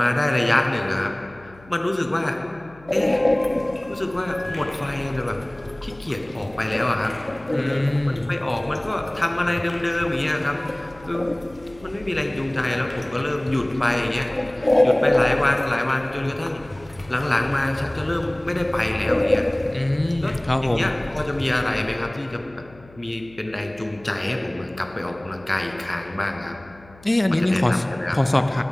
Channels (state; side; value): noise; left; hum, 24 dB below the sound